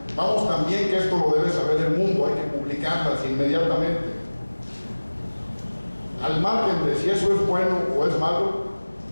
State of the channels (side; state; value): both; inverted; correlation -1.00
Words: vamos, también que esto lo debe saber el mundo, hay que publicarlas inmediatamente. Al margen de si eso es bueno o es malo,